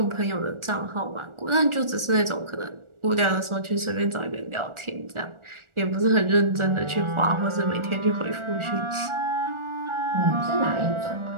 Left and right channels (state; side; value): late; left; 1.4 ms